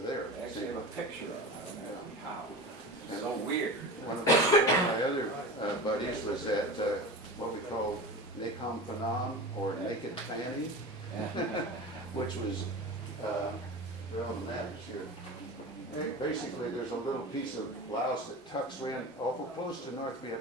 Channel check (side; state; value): both; normal; correlation 0.30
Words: there. I actually have a picture of it. I don't know how. It's so And weird. one of my other buddies was at what we call Nakhon Phanom, or Naked Fanny, which was, they're on the map here. Basically, there's a little piece of Laos that tucks in awful close to North